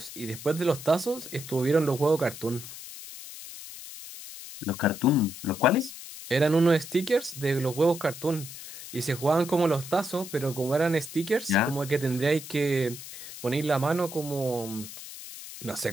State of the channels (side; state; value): left; noise; hiss, 13 dB below the sound